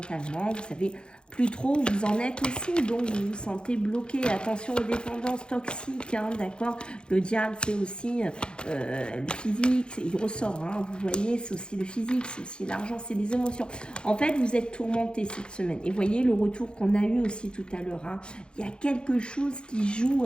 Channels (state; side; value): late; right; 0.051 ms